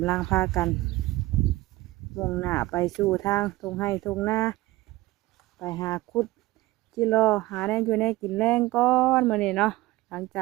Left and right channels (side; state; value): left; quieter; 18.7 dB